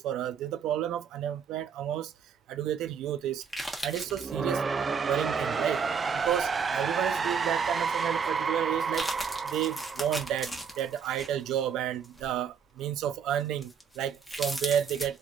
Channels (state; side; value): quieter; left; 7.0 dB